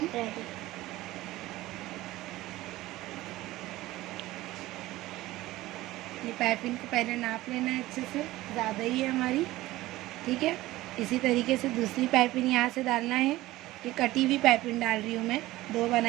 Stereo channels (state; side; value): quieter; left; 17.3 dB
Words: ये पाइपिंग को पहले नाप लेना है अच्छे से, ज़्यादा ही है हमारी, ठीक है। इसी तरीके से दूसरी पाइपिंग यहाँ से डालना है। ये कटी हुई पाइपिंग डाल रही हूँ मैं, 2